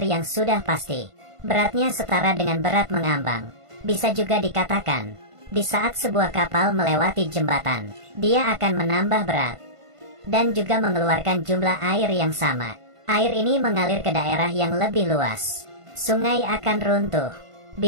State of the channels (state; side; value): late; left; 1.5 ms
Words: yang sudah pasti. Beratnya setara dengan berat mengambang. Bisa juga dikatakan, di saat sebuah kapal melewati jembatan, dia akan menambah berat dan juga mengeluarkan jumlah air yang sama. Air ini mengalir ke daerah yang lebih luas. Sungai akan runtuh